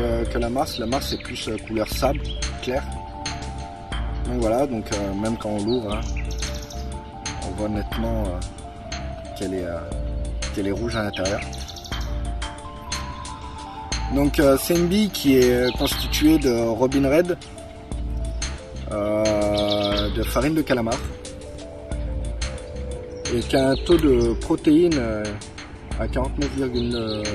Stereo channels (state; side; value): identical; both; correlation 1.00